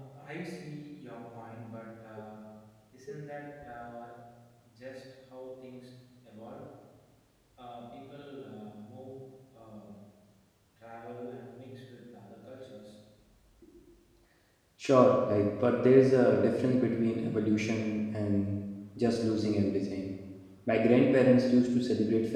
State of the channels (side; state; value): both; identical; correlation 1.00